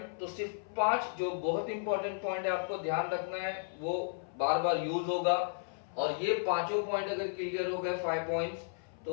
तो सिर्फ 5 जो बहुत इंपॉर्टेंट पॉइंट है आपको ध्यान रखना है, वो बार बार यूज होगा। और ये पांचों पॉइंट अगर क्लियर हो गए 5 पॉइंट्स, तो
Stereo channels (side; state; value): right; silent; 55 dB below the other